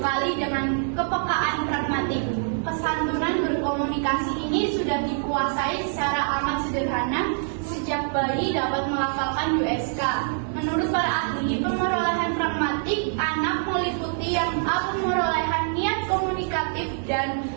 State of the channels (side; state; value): left; silent; digital silence